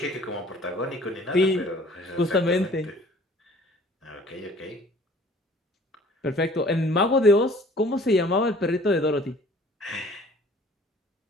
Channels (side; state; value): both; normal; correlation 0.52